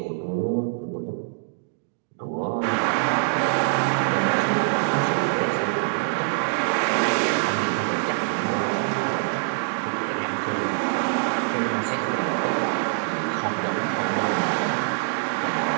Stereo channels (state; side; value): silent; left; digital silence